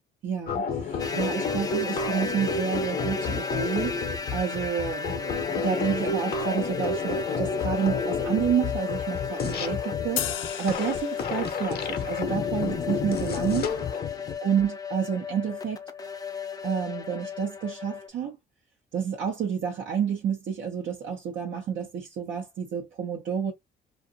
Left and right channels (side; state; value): both; normal; correlation 0.40